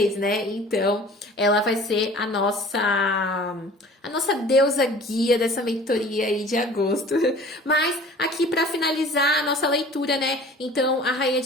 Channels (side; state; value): both; normal; correlation 0.46